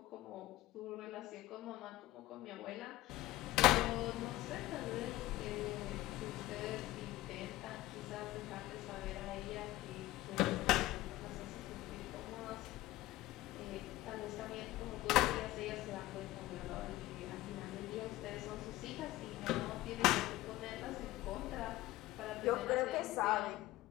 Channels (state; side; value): quieter; right; 17.1 dB